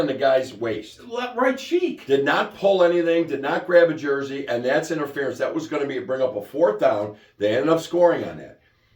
the guy's waist. Right cheek. Did not pull anything, did not grab a jersey, and that's interference. That was going to bring up a 4th down. They ended up scoring on that.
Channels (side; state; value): both; identical; correlation 1.00